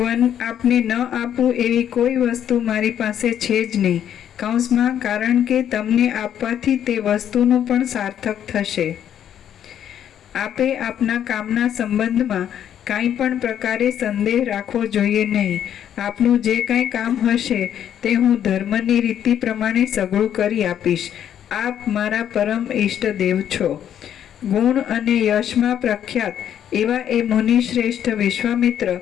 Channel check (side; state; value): right; quieter; 9.8 dB